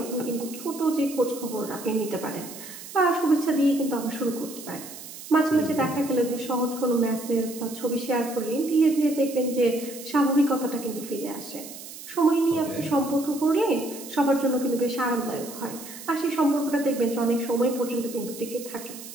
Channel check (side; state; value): right; noise; hiss, 13 dB below the sound